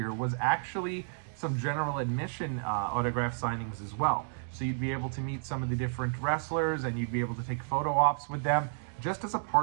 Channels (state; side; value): silent; left; digital silence